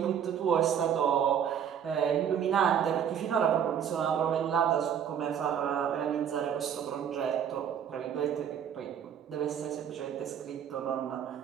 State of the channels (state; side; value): quieter; left; 8.6 dB